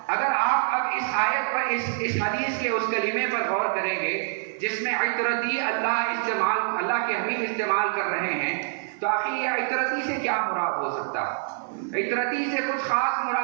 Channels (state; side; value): silent; left; 60 dB below the other